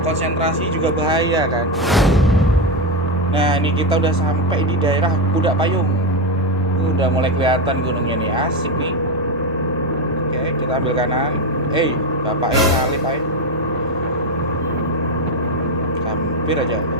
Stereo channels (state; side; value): normal; both; correlation 0.10